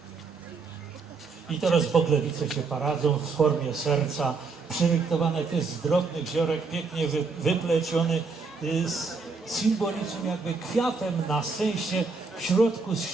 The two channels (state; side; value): quieter; left; 4.5 dB